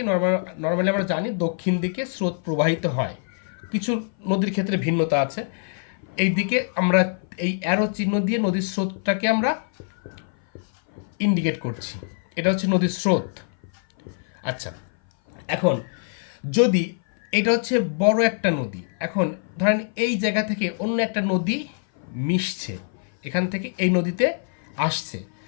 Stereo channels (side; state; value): right; silent; 57 dB below the other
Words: নর্মালি আমরা জানি দক্ষিণ দিকে স্রোত প্রবাহিত হয়, কিছু নদীর ক্ষেত্রে ভিন্নতা আছে। এই দিকে আমরা এই অ্যারো চিহ্ন দিয়ে নদীর স্রোতটাকে আমরা ইন্ডিকেট করছি, এটা হচ্ছে নদীর স্রোত। আচ্ছা, এখন যদি এটা হচ্ছে বড় একটা নদী, এখন ধরেন এই জায়গা থেকে অন্য একটা নদী মিশছে, এখান থেকে এই নদীতে আসছে,